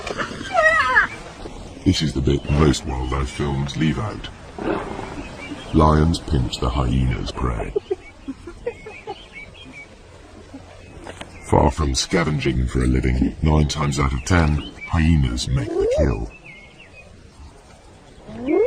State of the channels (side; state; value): both; identical; correlation 1.00